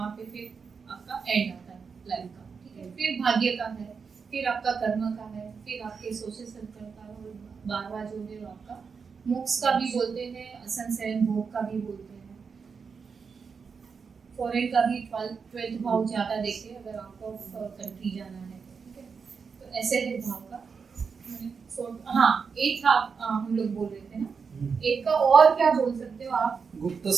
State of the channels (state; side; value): quieter; left; 5.6 dB